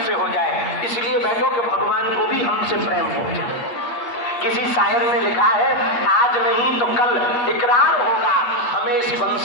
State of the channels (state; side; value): late; right; 8.3 ms